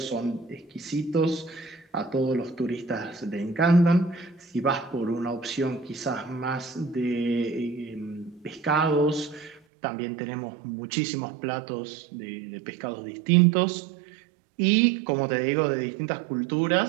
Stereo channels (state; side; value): drops out; left; at 9.6 s